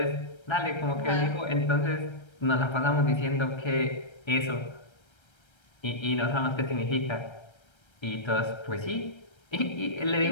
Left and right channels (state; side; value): late; right; 1.3 ms